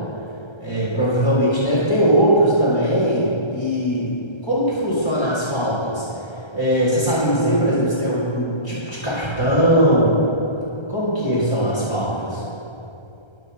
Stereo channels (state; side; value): late; right; 1.3 ms